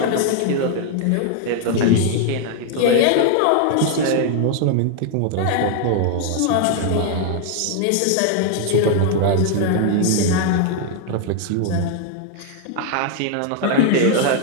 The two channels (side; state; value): both; different; correlation 0.00